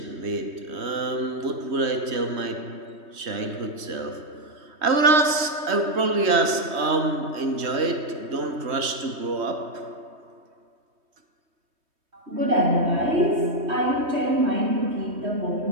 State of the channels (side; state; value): left; late; 3.2 ms